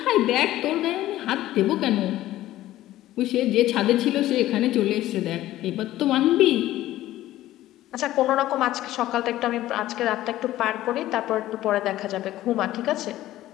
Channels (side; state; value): right; quieter; 14.8 dB